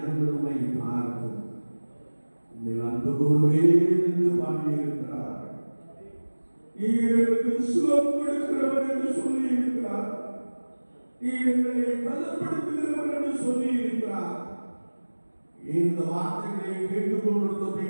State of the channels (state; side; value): inverted; both; correlation -1.00